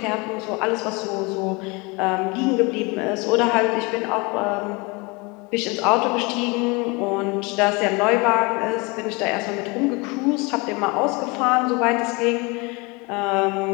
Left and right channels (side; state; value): right; quieter; 27.5 dB